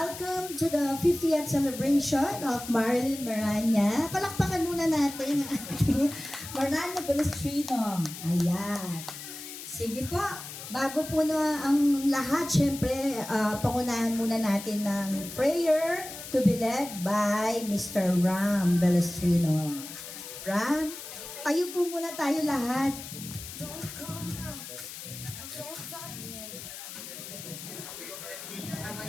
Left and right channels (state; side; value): noise; left; hiss, 11 dB below the sound